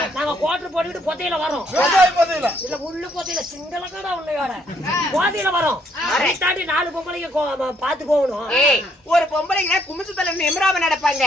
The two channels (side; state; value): both; normal; correlation 0.69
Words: நாங்க கோட்டர் போட்டுக்கிட்டு பொத்தையில வரோம். இல்ல முள்ளு பொத்தையில சிங்கள கடை உள்ளையோட போதையில வரோம். அதை தாண்டி 4 பொம்பளைங்க பாத்து போகணும். ஒரு பொம்பளைங்க குமிச்சு தலை எமராம நடப்பாங்க.